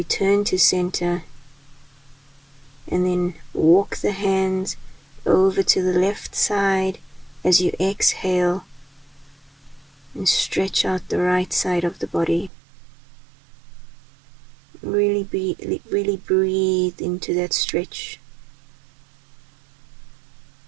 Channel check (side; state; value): left; drops out; at 12.5 s